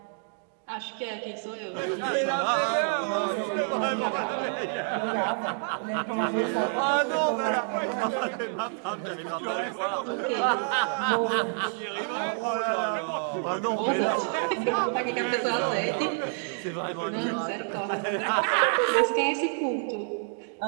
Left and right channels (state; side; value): silent; left; 56 dB below the other